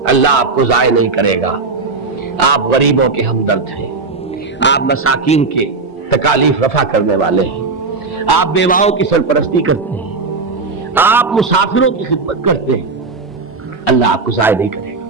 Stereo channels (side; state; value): left; quieter; 4.1 dB